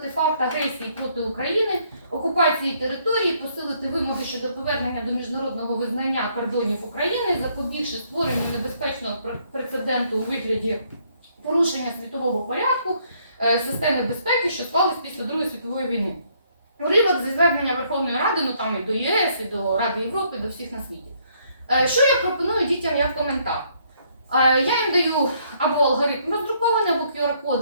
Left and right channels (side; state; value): both; inverted; correlation -0.68